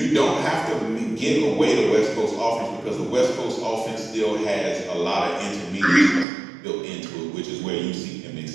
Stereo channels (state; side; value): drops out; left; at 6.2 s